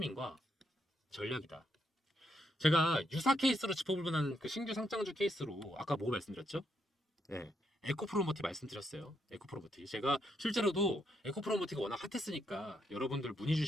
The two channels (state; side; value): normal; both; correlation 0.78